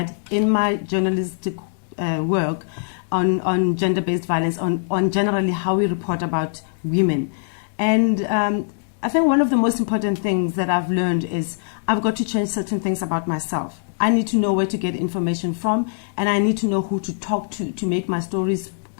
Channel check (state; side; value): silent; right; digital silence